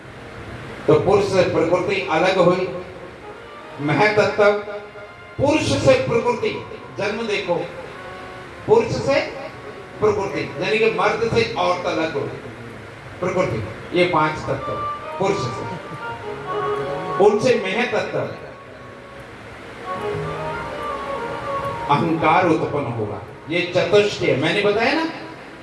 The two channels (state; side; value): identical; both; correlation 1.00